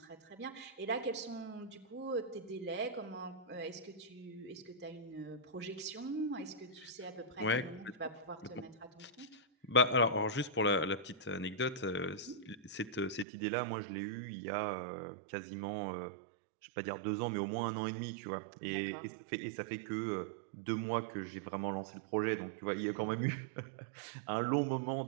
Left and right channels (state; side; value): drops out; left; at 13.2 s